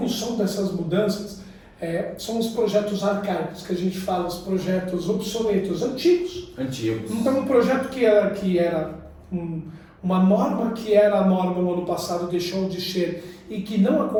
dessas mudanças são os projetos arcaicos que a gente fala, os projetos obsoletos, antigos. Então um projeto que era uma norma que era a norma no ano passado deixou de ser e que não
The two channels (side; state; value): both; identical; correlation 1.00